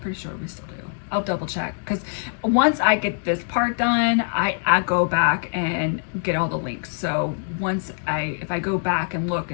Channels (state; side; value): silent; right; digital silence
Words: sure we still do. I'll double check, because once I get this part done, I go back and get all the links. So if I go back and look